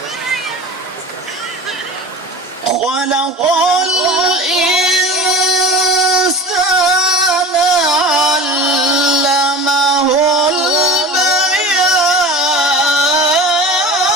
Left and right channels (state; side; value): normal; both; correlation 0.34